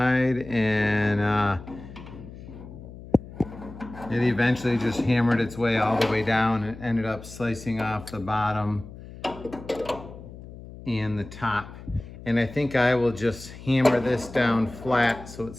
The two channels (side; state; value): left; noise; hum, 15 dB below the sound